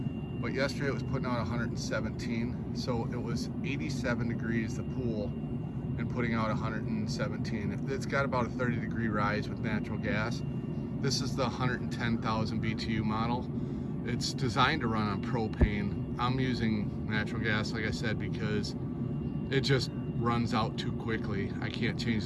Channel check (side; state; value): both; identical; correlation 1.00